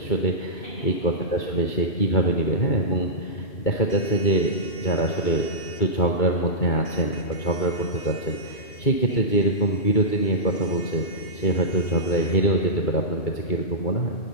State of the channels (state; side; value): late; right; 2.3 ms